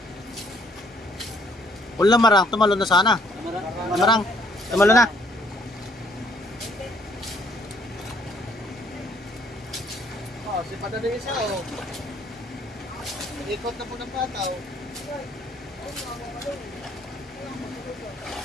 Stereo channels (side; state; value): both; normal; correlation 0.64